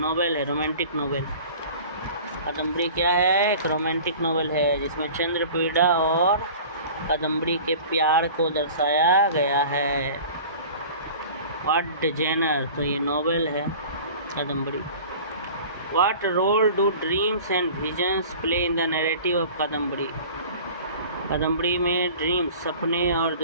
है, रोमांटिक नॉवेल। कादम्बरी क्या है? एक रोमांटिक नॉवेल है जिसमें चंद्रपीड़ा और कादम्बरी के प्यार को दर्शाया गया है। What genre? तो ये नॉवेल है Kadambari. What role do dreams and visions play in the narrative of Kadambari? Kadambari में ड्रीम्स, सपने और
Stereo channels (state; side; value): inverted; both; correlation -0.42